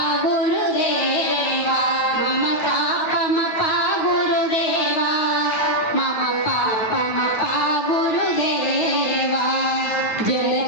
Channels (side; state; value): right; late; 9.4 ms